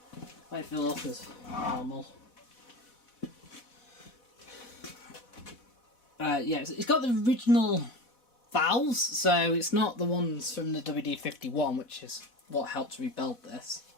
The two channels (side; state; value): right; late; 4.1 ms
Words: Wait for it to lock as normal. Yeah, it's got the original valves, so it's not the ones from the WD-51, which is what helped rebuild this.